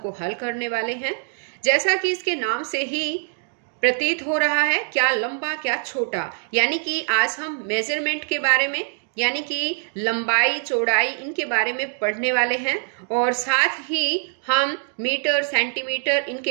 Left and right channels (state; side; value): silent; left; 63 dB below the other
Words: हल करने वाले हैं। जैसा कि इसके नाम से ही प्रतीत हो रहा है, क्या लंबा क्या छोटा, यानी कि आज हम मेजरमेंट के बारे में यानी कि लंबाई चौड़ाई इनके बारे में पढ़ने वाले हैं और साथ ही हम मीटर सेंटीमीटर